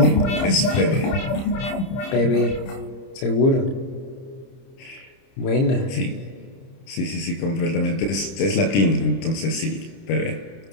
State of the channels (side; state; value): right; late; 30 ms